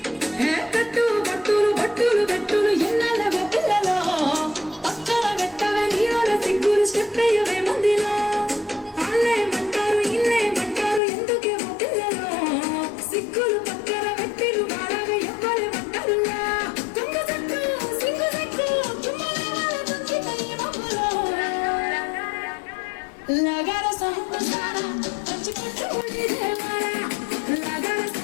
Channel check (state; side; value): drops out; right; at 11.0 s